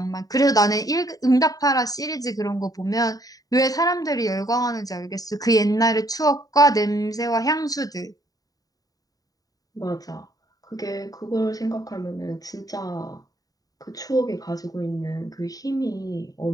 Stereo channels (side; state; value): right; late; 0.18 ms